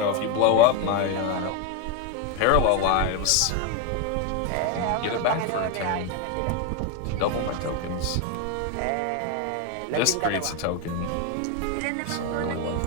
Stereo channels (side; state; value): both; different; correlation 0.02